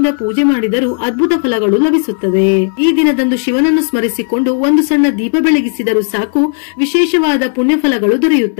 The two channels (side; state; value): right; silent; 56 dB below the other